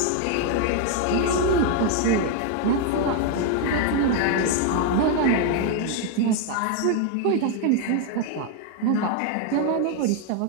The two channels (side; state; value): both; different; correlation 0.01